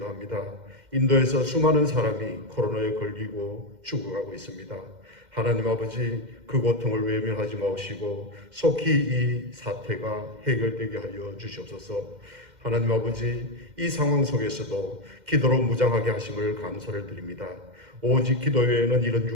인도에서 수많은 사람이 코로나에 걸리고 죽어가고 있습니다. 하나님 아버지, 그 고통을 외면하지 마시고 속히 이 사태가 해결되게 하여 주시옵소서. 하나님 아버지, 이 상황 속에서도 기도로 무장하게 하심을 감사를 드립니다. 오직 기도 외에는 이런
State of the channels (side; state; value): left; late; 2.1 ms